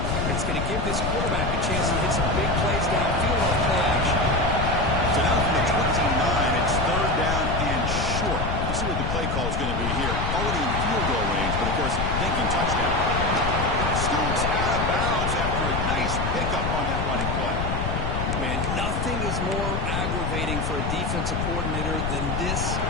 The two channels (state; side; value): noise; left; rumble, 1 dB below the sound